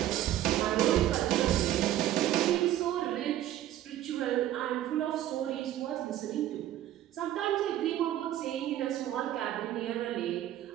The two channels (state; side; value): quieter; left; 12.8 dB